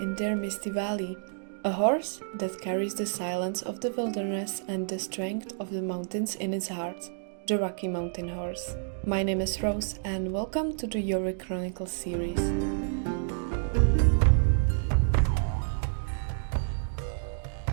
in their misty valley. A horse that carries the silence of the wilderness and the strength of the mountains in its heart. The Rocky Mountain Horse. My name is Rose and welcome to the JORVIK Chronicles series.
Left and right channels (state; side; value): silent; left; digital silence